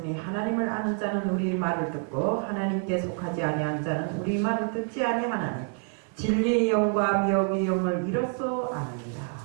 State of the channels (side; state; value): left; quieter; 40.0 dB